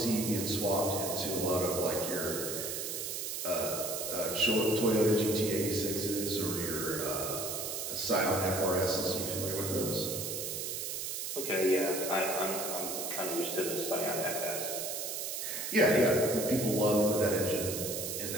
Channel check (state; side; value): noise; right; hiss, 4 dB below the sound